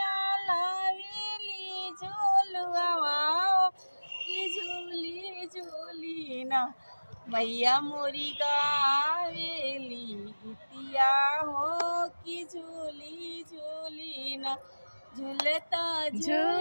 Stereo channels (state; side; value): inverted; both; correlation -1.00